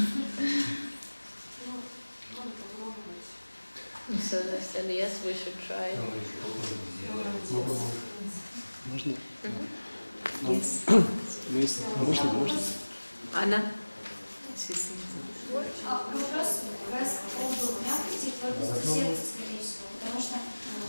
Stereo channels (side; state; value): both; inverted; correlation -1.00